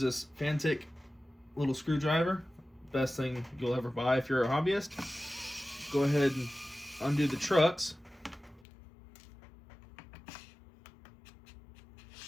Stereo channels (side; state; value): right; drops out; at 8.7 s